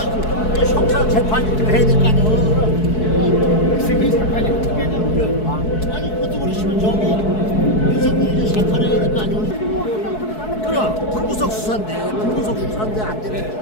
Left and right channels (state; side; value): late; right; 4.7 ms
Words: 형사 재판이 좀 해야 될 거 아니야. 세계 재판이 어떻게 하냐면 아니 그것도 그러시면 저기 윤석열이 재판을 해야 될 거 아니야. 그럼 불구속 수사인데 안